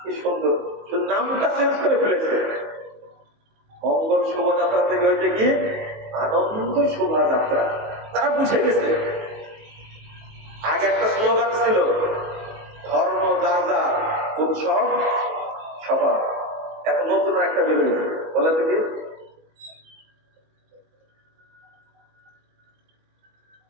কি সুন্দর, নামটা চেঞ্জ করে ফেলেছে। মঙ্গল শোভাযাত্রা থেকে হয়েছে কি আনন্দ শোভাযাত্রা। তারা বুঝে গেছে। আগে একটা স্লোগান ছিল ধর্ম যার যার, উৎসব বের হয়েছে, বলে থেকে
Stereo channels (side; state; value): left; late; 19 ms